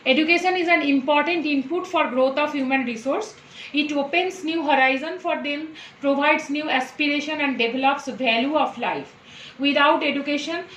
Education is an important input for growth of human resource. It opens new horizon for them, provides new aspiration, and develops value of life. Without education,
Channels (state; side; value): identical; both; correlation 1.00